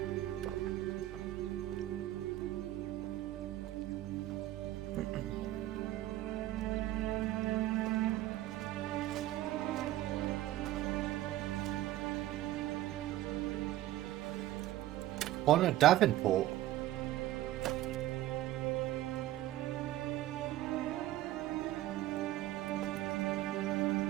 On a Davenport.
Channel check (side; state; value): left; quieter; 14.7 dB